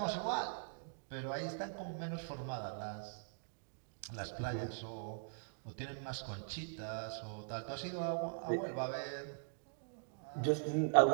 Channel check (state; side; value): silent; left; digital silence